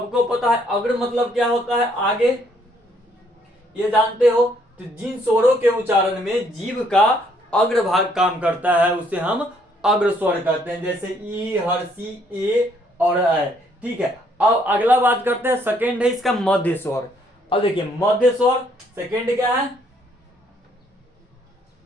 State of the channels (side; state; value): both; normal; correlation 0.68